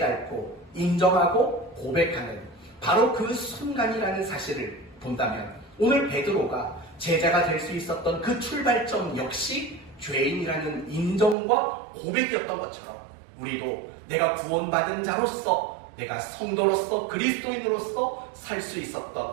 인정하고 고백하는 바로 그 순간이라는 사실을 본다면, 오늘 베드로가 제자가 될 수 있었던 그 출발점 역시 죄인이라는 인정과 고백이었던 것처럼 우리도 내가 구원받은 자로서, 내가 성도로서 그리스도인으로서 살 수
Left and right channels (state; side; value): drops out; left; at 11.4 s